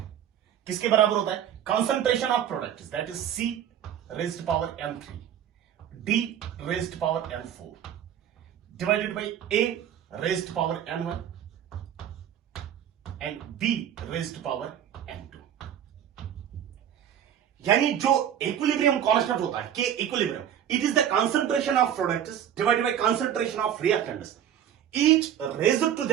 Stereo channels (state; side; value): quieter; left; 10.0 dB